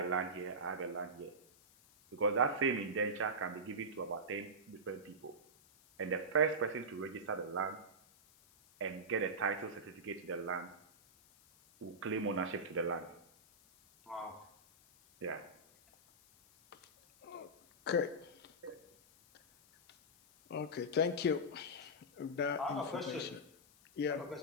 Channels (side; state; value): left; noise; hiss, 26 dB below the sound